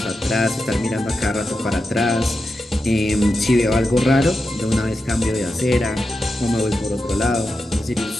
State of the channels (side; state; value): both; normal; correlation 0.89